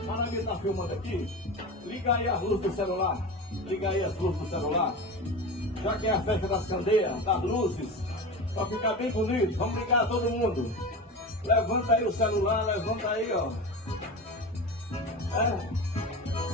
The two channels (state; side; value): normal; both; correlation 0.27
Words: Para mim tá filmando aqui. Liga aí as luzes do celular. Liga aí as luzes do celular. Já que é a festa das candeias, das luzes, para ficar bem bonito, vamos ligar todo mundo. Levanta aí o celular, levanta aí, ó.